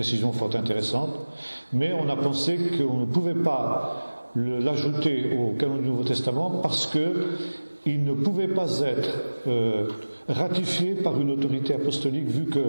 fort intéressantes, mais on a pensé qu'on ne pouvait pas l'ajouter au canon du Nouveau Testament parce qu'il ne pouvait pas être ratifié par une autorité apostolique, vu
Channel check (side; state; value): both; inverted; correlation -1.00